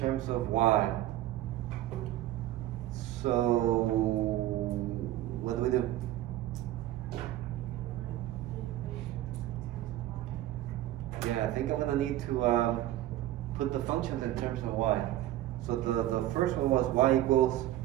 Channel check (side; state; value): left; quieter; 14.2 dB